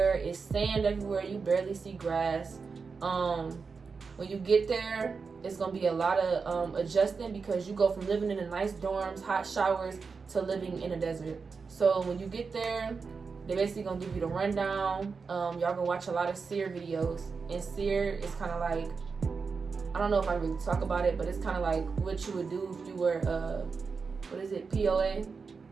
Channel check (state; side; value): quieter; left; 5.0 dB